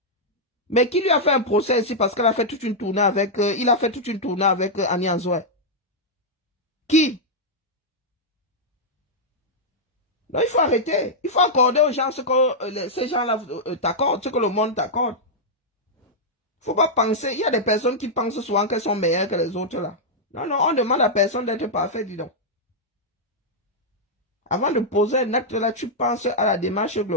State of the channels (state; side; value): normal; both; correlation -0.06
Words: Mais qui lui a fait un procès ici parce qu'elle a fait toute une tournée avec, il a fait toute une tournée avec Annie Anzoé. Qui? Non, il faut arrêter. Il faut accorder aux gens ce que ces gens-là t'accordent, ce que le monde t'accorde. Il ne faut pas penser. Il y a des personnes qui pensent souvent qu'elles sont meilleures que les autres là. Non, non, on demande à personne d'être parfait, dis donc. Avant de poser un acte là, tu penses à la démarche